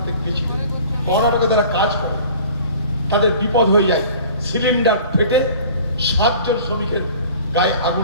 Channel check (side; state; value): both; inverted; correlation -0.46